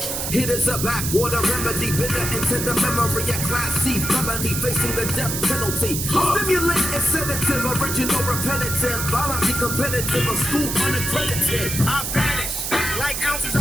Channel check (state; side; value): noise; right; hiss, 3 dB below the sound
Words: It is a backwater remedy, bitter into the memory. A class C felony facing the death penalty. Stimulate and sedative, original repetitive, violently competitive, a school unaccredited. I vanish like ounces